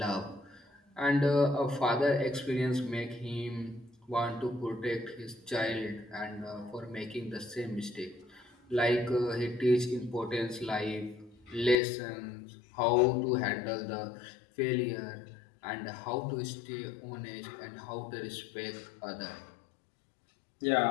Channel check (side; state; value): right; drops out; at 11.8 s